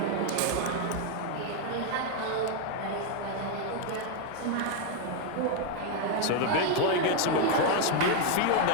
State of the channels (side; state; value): both; different; correlation 0.01